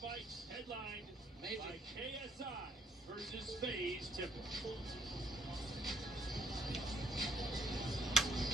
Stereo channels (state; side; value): normal; both; correlation 0.67